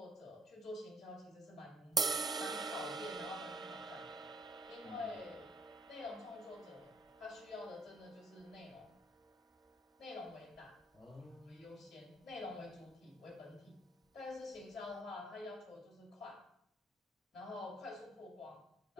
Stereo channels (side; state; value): both; normal; correlation 0.65